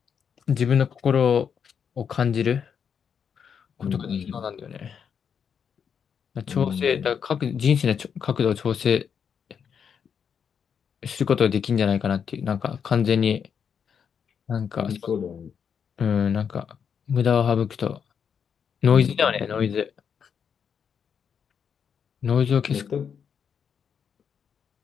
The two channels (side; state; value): right; quieter; 7.2 dB